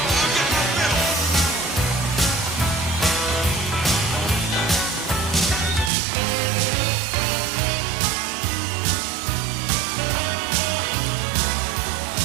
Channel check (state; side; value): drops out; left; at 5.9 s